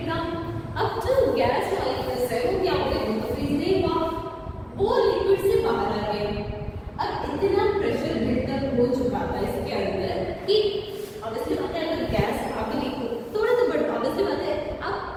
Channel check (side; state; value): both; identical; correlation 1.00